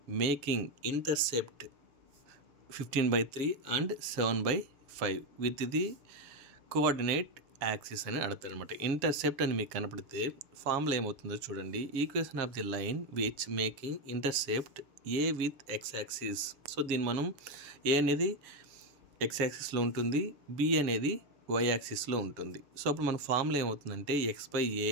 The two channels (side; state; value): left; late; 6.9 ms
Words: making intercept 15/3 and 7/5 with the coordinate axis అని అడుగుతారు అనమాట. ఇంటర్సెప్ట్ అని మీకు కనపడితే ఫార్ములా ఏమవుతుందో చూడండి. Equation of the line which making intercept A with X axis. So దీన్ని మనం ఏ అనేది ఎక్స్ యాక్సిస్లో ఉంటుంది, బి అనేది వై యాక్సిస్లో ఉంటుంది. సో అప్పుడు మన ఫార్ములా ఏమవుతుందంటే x/a